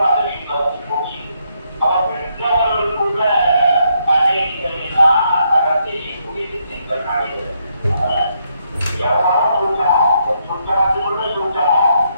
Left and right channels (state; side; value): inverted; both; correlation -0.76